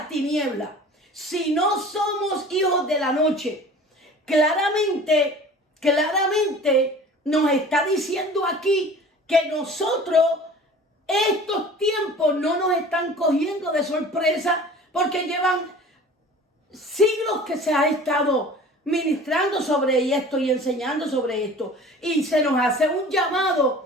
tinieblas, si no somos hijos de la noche, claramente nos está diciendo aquí que nosotros, estos tiempos no nos están cogiendo de sorpresa, porque llevan siglos que se ha estado ministrando sobre esto y enseñando sobre esto. Y se nos hace un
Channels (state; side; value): normal; both; correlation 0.43